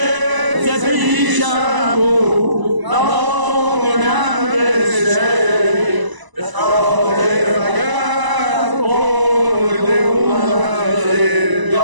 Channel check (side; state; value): left; late; 1.0 ms